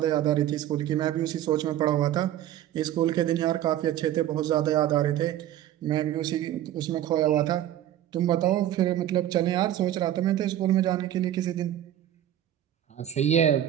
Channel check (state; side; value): quieter; left; 12.1 dB